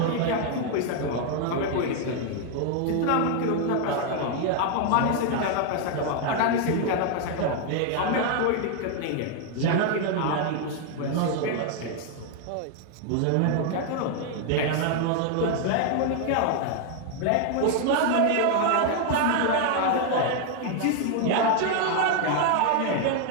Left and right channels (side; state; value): both; different; correlation 0.00